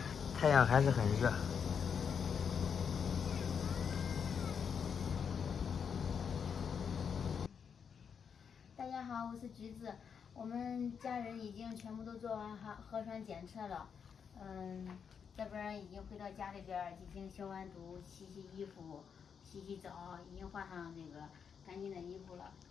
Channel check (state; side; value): quieter; right; 6.9 dB